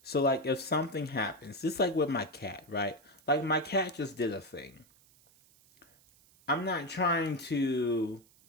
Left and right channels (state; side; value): noise; right; hiss, 29 dB below the sound